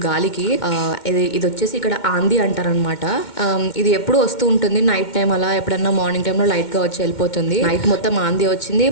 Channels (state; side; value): late; right; 2.1 ms